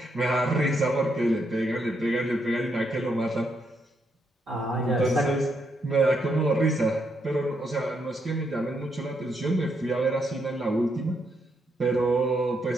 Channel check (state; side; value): normal; both; correlation 0.78